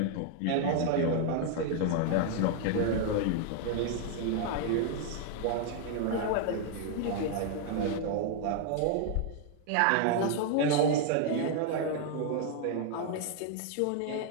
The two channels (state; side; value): different; both; correlation 0.00